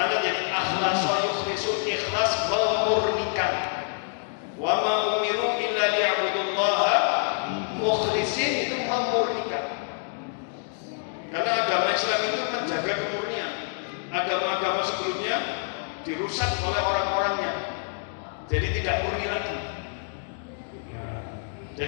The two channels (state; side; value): silent; right; digital silence